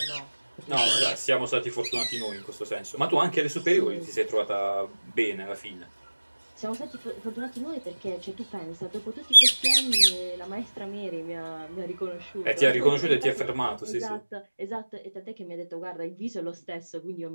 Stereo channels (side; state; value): both; inverted; correlation -1.00